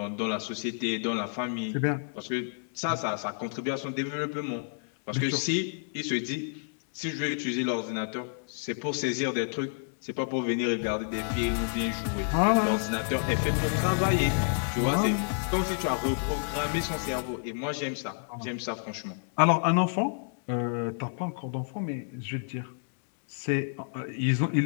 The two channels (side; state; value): right; silent; 58 dB below the other